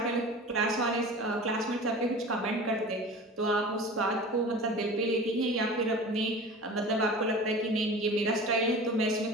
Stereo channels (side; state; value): both; normal; correlation 0.37